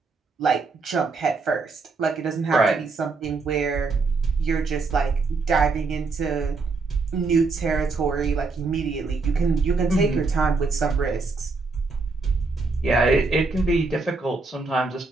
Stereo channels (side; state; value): left; quieter; 4.1 dB